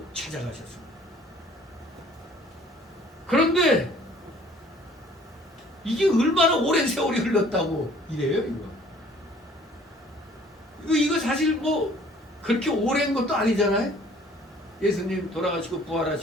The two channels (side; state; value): both; normal; correlation 0.55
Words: 찾아가셨습니다. 그런데 이게 얼마나 오랜 세월이 흘렀다고 이래요, 이거 사실 뭐 그렇게 오랜 것도 아니잖아요. 예수님 돌아가시고